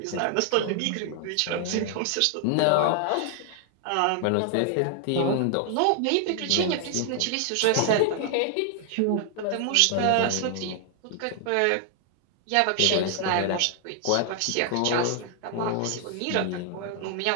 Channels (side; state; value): both; different; correlation 0.00